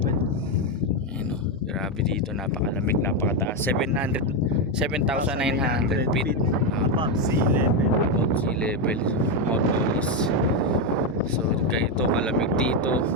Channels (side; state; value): both; normal; correlation 0.06